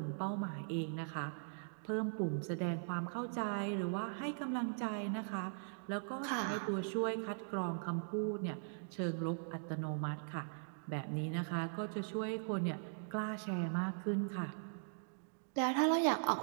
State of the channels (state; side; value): silent; left; digital silence